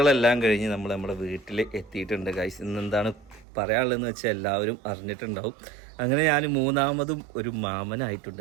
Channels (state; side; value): drops out; left; at 3.5 s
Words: കഴിഞ്ഞ് നമ്മൾ നമ്മുടെ വീട്ടിൽ എത്തിയിട്ടുണ്ട് ഗൈസ്. ഇന്നെന്താണ് പറയാനുള്ളതെന്ന് വെച്ചാൽ എല്ലാവരും അറിഞ്ഞിട്ടുണ്ടാവും. അങ്ങനെ ഞാൻ മൂന്നാമതും ഒരു മാമനായിട്ടുണ്ട്